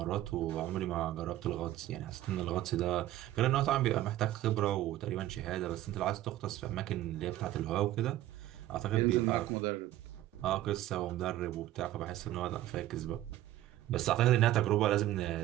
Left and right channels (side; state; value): left; quieter; 14.4 dB